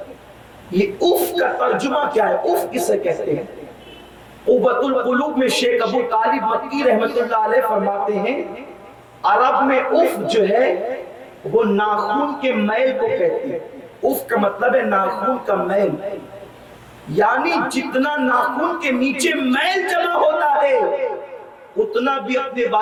یہ اف کا ترجمہ کیا ہے؟ اف کسے کہتے ہیں؟ قوت القلوب میں شیخ ابو طالب مکی رحمت اللہ علیہ فرماتے ہیں عرب میں اف جو ہے وہ ناخن کے میل کو کہتے ہیں۔ اف کا مطلب ہے ناخن کا میل، یعنی جتنا ناخن کے نیچے میل جمع ہوتا ہے اتنا بھی اپنے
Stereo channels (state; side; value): identical; both; correlation 1.00